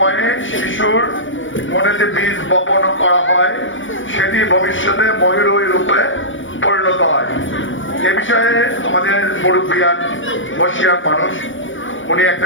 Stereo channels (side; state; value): right; late; 0.56 ms